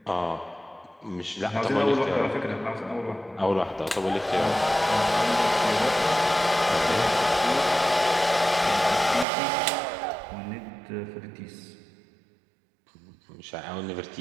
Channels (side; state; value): left; drops out; at 9.2 s